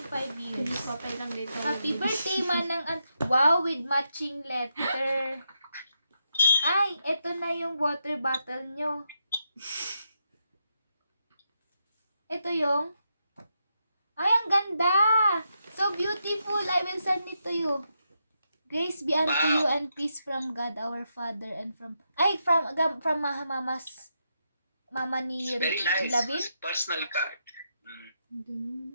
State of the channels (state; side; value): inverted; both; correlation -0.83